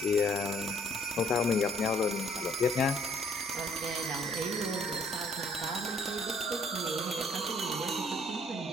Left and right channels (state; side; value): normal; both; correlation 0.62